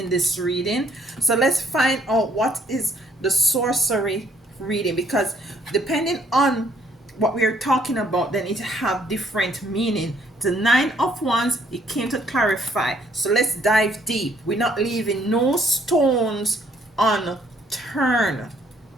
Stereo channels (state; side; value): normal; both; correlation 0.65